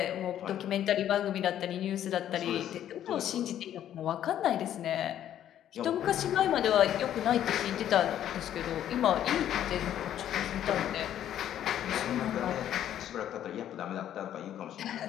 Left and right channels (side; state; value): right; quieter; 11.0 dB